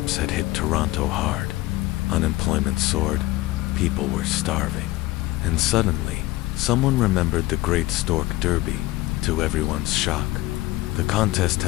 had hit Toronto hard. Unemployment soared, people were starving. And suddenly, someone remembered the Great Stork Derby, to everyone's shock. The contest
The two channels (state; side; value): quieter; right; 18.4 dB